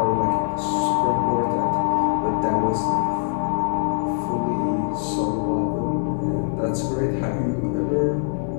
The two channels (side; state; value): right; silent; digital silence